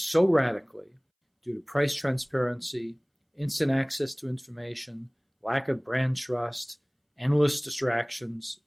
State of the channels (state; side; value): identical; both; correlation 1.00